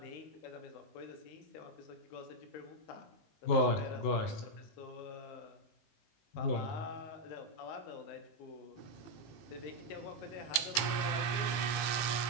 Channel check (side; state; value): right; late; 18 ms